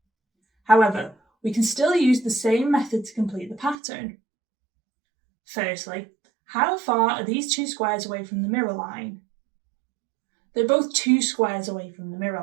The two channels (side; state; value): left; drops out; at 3.8 s